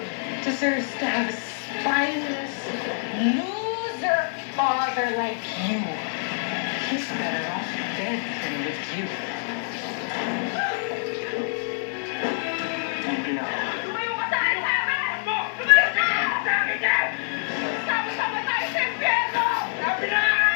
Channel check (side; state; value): right; silent; digital silence